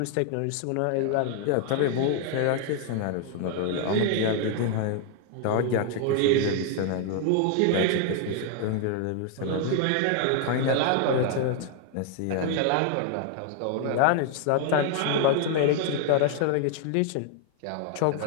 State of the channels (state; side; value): different; both; correlation 0.00